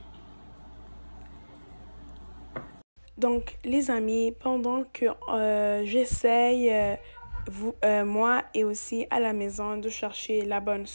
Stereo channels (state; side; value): inverted; both; correlation -1.00